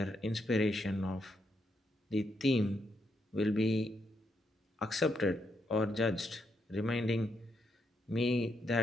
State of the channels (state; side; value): normal; both; correlation 0.79